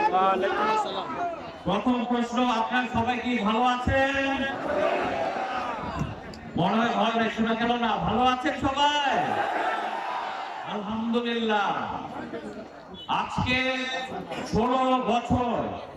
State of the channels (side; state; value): both; identical; correlation 1.00